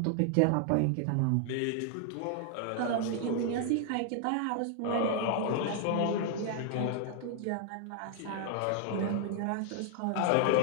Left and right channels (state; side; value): different; both; correlation 0.00